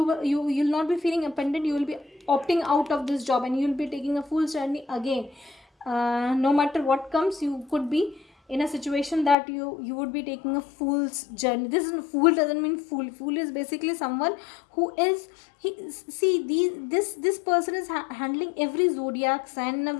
not be feeling abandoned, you will be opting out of this job, and you'll be taking a full journey again. No matter what comes, you could be in a situation that you would be taking a fool's journey. This is, fool doesn't mean fool. Fool is basically someone who is, he, see, this person is handling every zodiac sign in a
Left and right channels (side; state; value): right; drops out; at 9.3 s